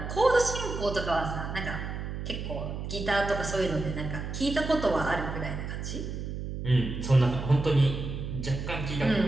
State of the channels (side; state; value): right; noise; hum, 6 dB below the sound